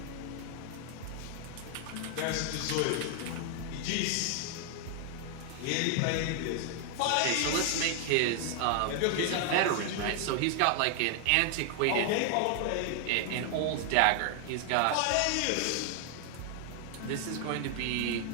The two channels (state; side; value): different; both; correlation 0.00